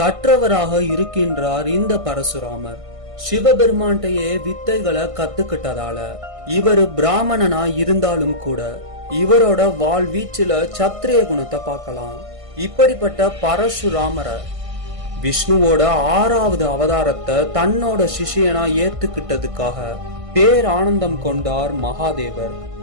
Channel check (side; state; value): left; late; 1.5 ms